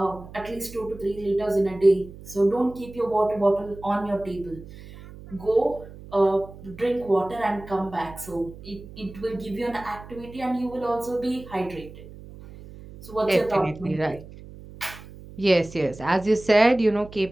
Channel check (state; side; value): noise; right; hum, 17 dB below the sound